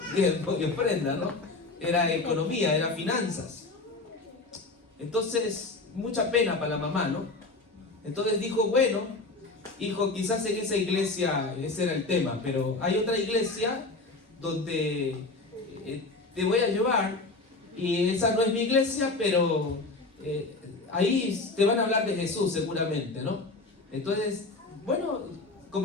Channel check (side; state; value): right; quieter; 3.4 dB